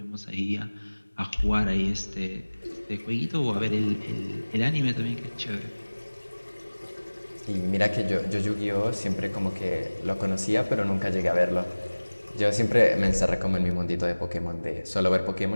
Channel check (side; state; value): both; inverted; correlation -1.00